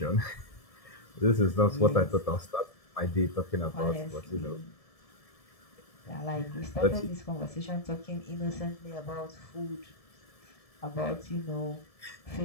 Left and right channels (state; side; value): late; right; 1.7 ms